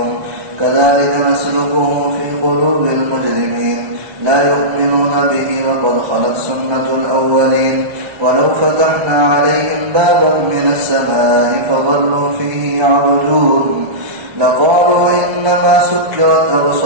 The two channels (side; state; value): left; late; 1.2 ms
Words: كذلك نسلكه في قلوب المجرمين لا يؤمنون به وقد خلت سنة الأولين ولو فتحنا عليهم بابا من السماء فظلوا فيه يعرجون لقالوا إنما سكرت